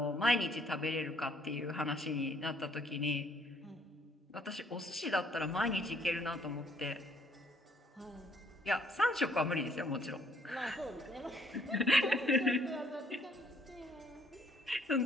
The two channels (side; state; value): both; normal; correlation 0.65